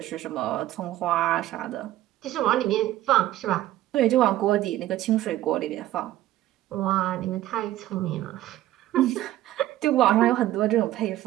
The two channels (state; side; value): quieter; left; 14.4 dB